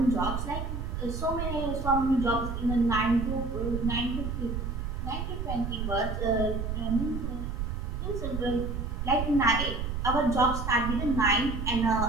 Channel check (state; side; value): noise; right; rumble, 3 dB below the sound